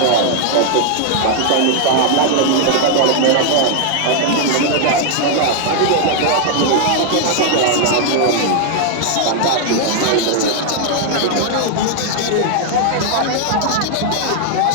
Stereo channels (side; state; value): both; different; correlation 0.00